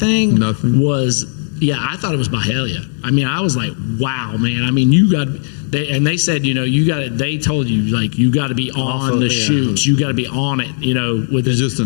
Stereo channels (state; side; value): silent; right; 69 dB below the other